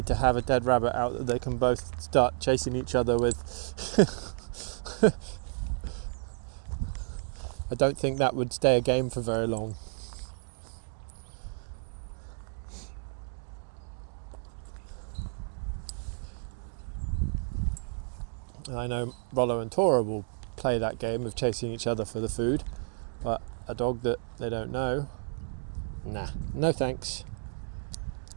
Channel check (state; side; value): silent; left; digital silence